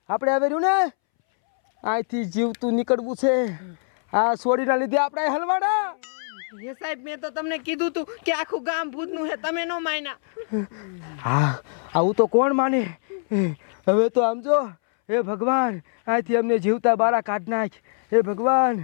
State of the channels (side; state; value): right; silent; 63 dB below the other